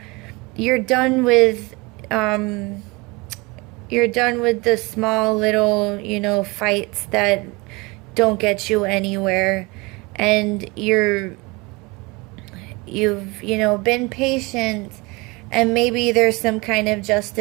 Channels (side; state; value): left; quieter; 25.1 dB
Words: you're done with the small little, fights that don't get you anywhere, and you've been patient, and maybe there's some kind of